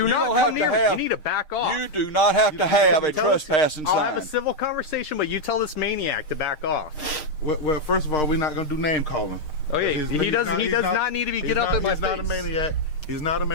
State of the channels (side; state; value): right; late; 6.5 ms